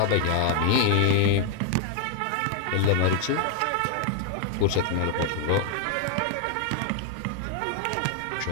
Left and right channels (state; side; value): different; both; correlation 0.00